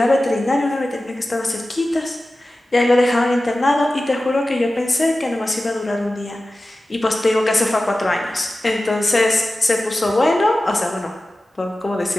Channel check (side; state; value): both; normal; correlation 0.95